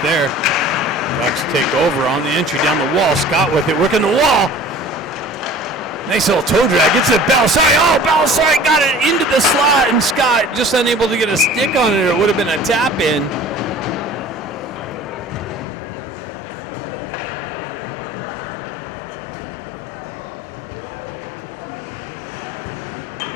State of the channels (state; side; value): drops out; right; at 15.7 s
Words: there. Ducks take over on the entry down the wall. Scott with it, working the wall. Nice little toe drag. Gets it to Balasari. Oh, Balasari got it into the slot, and Scott just unable to get a stick on it, or it would have been a tap in.